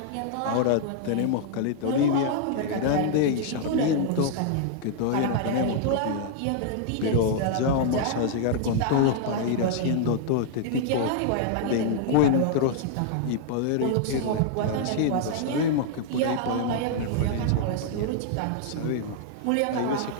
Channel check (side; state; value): both; different; correlation -0.01